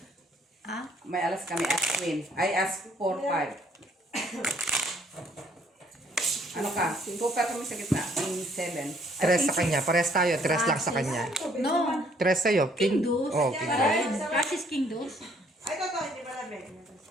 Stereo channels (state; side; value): normal; both; correlation 0.63